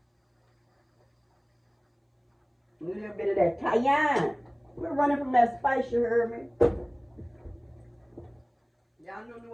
A little bit of that cayenne. We're running from that spice, you heard me? Y'all know New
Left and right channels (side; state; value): both; identical; correlation 1.00